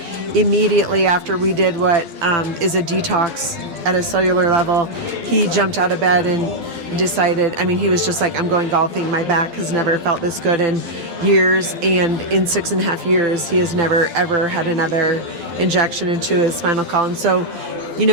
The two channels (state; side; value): late; left; 12 ms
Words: immediately after we did what is a detox at a cellular level, he jumped out of bed and decided, he was just like, I'm going golfing. My back has never felt this good in years. And in 6.5 years, he has never, ever had another injection into his spinal column. So we